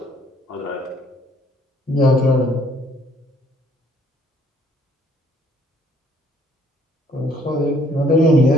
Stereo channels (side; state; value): both; normal; correlation 0.62